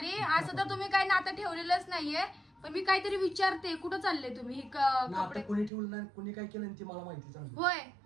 असं तर तुम्ही काही नातं ठेवलेलंच नाहीये, पण मी काहीतरी विचारते. कुठं चालले तुम्ही? ही कपडे कोणी ठेवलं नाही, कोणी काय केलं ती मला माहिती चांगली. होय,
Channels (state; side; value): drops out; left; at 5.7 s